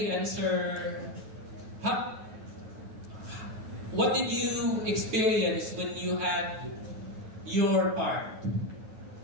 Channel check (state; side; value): late; left; 9.2 ms